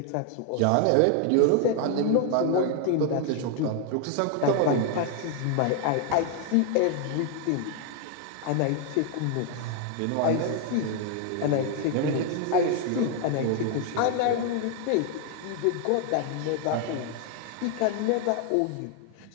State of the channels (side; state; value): both; different; correlation 0.00